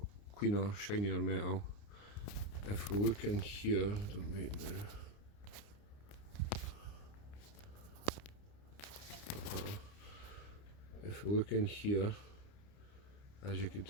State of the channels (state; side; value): late; right; 29 ms